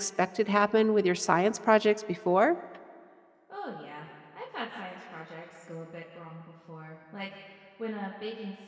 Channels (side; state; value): both; identical; correlation 1.00